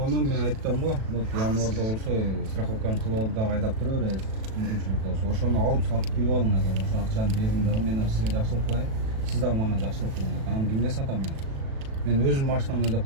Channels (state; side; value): late; left; 37 ms